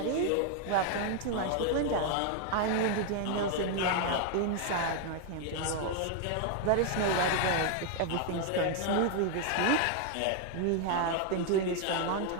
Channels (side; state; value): both; different; correlation 0.01